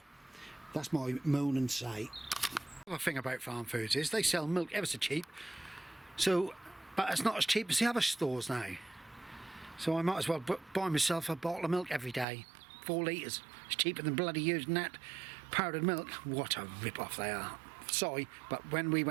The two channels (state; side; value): drops out; left; at 12.2 s